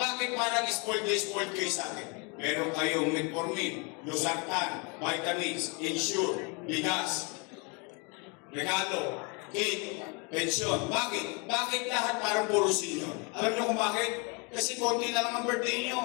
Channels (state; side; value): quieter; right; 32.2 dB